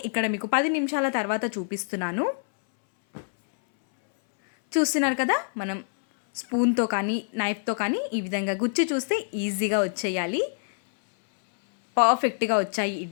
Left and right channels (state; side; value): silent; right; 61 dB below the other